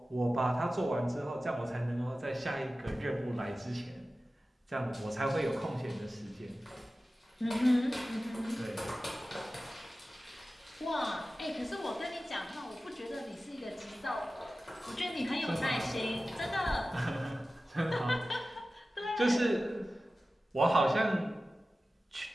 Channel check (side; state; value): both; normal; correlation 0.95